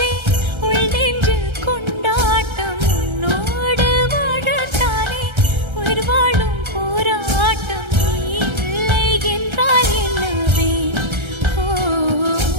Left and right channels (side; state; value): left; late; 1.3 ms